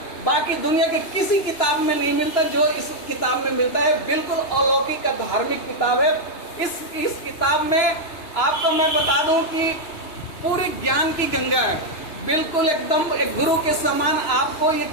बाकी दुनिया के किसी किताब में नहीं मिलता जो इस किताब में मिलता है। बिल्कुल अलौकिक का धार्मिक किताब है। इस किताब में आपको मैं बता दूं कि पूरी ज्ञान की गंगा है, बिल्कुल एकदम एक गुरु के समान। आपको ये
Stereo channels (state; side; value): late; right; 2.9 ms